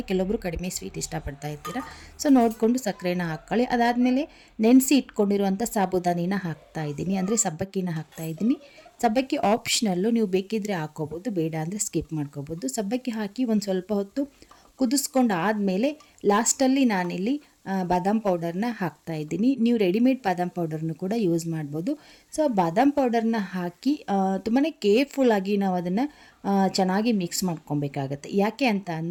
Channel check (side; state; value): both; identical; correlation 1.00